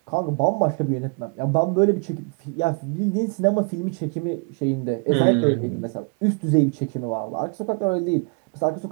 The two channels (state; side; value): quieter; left; 34.7 dB